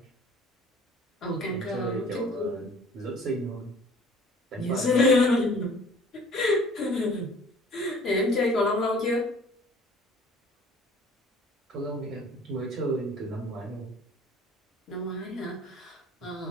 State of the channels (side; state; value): both; normal; correlation 0.50